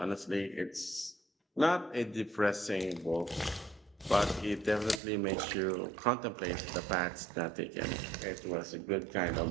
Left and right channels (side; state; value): left; drops out; at 5.0 s